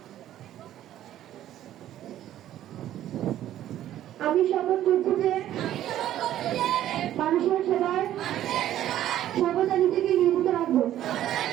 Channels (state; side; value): quieter; left; 12.4 dB